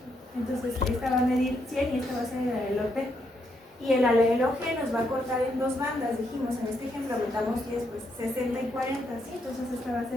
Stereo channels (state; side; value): normal; both; correlation 0.77